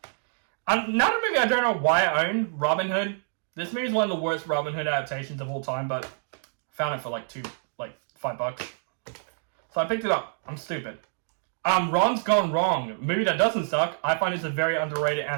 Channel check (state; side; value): silent; left; digital silence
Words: Another movie I don't know why I own, Robin Hood. This movie is one of the worst Robin Hood adaptations of all time, but I found it for like $5. So I picked it up. I'm stupid. Ron's Gone Wrong, movie that doesn't suck. I find it's a very underrated